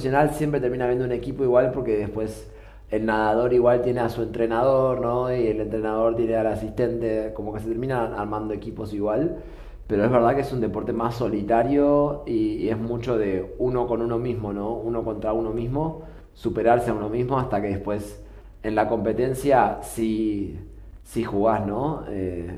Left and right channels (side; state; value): both; identical; correlation 1.00